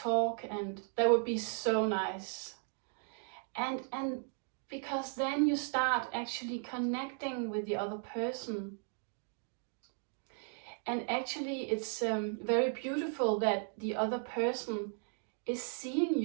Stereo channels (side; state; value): left; silent; 54 dB below the other